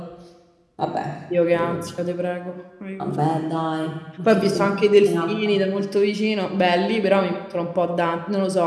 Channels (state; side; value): identical; both; correlation 1.00